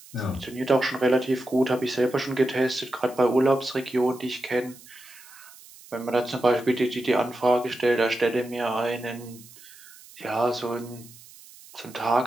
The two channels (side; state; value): right; noise; hiss, 21 dB below the sound